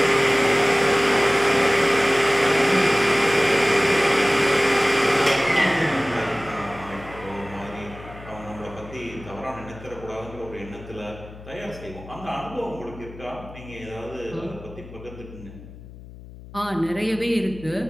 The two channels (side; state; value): left; noise; hum, 17 dB below the sound